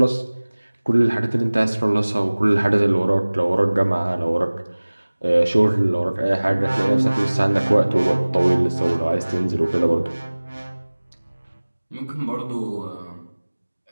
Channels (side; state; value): both; inverted; correlation -1.00